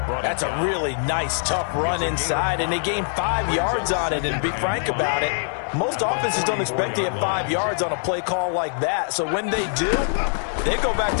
That's a really nice, tough run inside, and they gained 5 yards on it. And to be frank about it, most offenses don't expect to get 5 yards on a play call like that. So when they do, they go back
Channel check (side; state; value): right; silent; digital silence